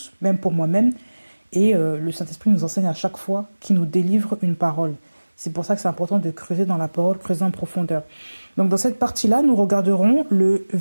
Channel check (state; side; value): inverted; both; correlation -1.00